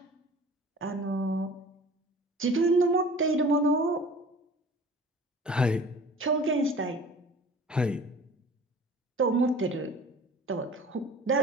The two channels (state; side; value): normal; both; correlation 0.45